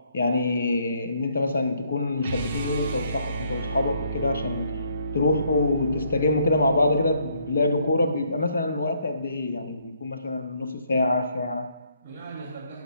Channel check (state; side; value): inverted; both; correlation -0.70